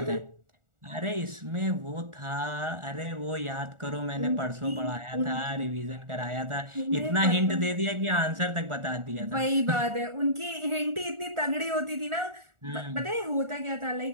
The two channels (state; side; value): late; left; 1.4 ms